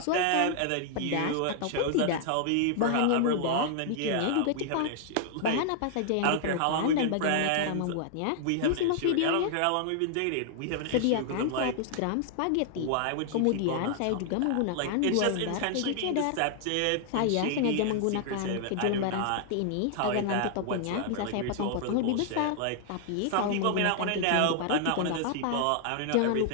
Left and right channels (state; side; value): different; both; correlation 0.00